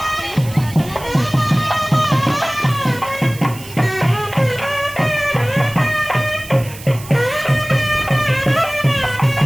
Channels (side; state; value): right; noise; hiss, 17 dB below the sound